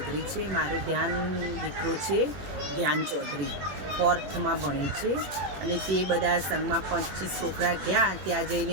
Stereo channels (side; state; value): left; late; 21 ms